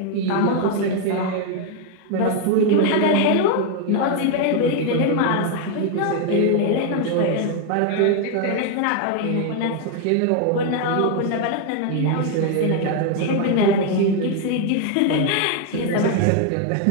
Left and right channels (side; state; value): both; different; correlation 0.01